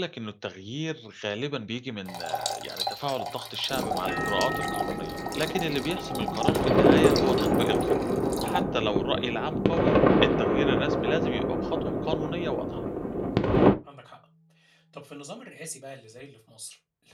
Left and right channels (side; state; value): both; identical; correlation 1.00